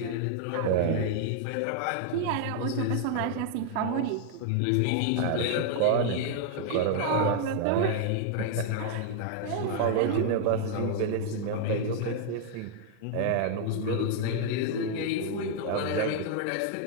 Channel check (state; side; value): different; both; correlation 0.00